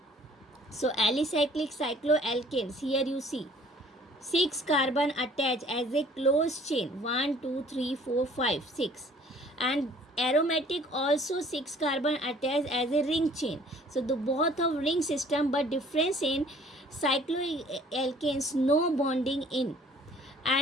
So alicyclic cycloalkanes, here you see 6 carbon attached as a closed chain, 1 2 3 4 5 6, and aromatic also 6 carbon attached as a ring chain. So the both of ring system, but difference in cycloalkanes no bonding in,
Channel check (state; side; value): normal; both; correlation 0.55